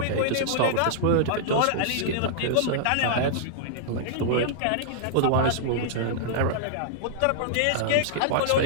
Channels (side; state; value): both; different; correlation -0.02